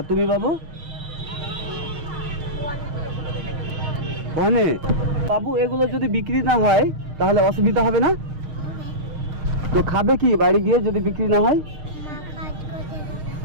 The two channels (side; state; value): left; late; 6.5 ms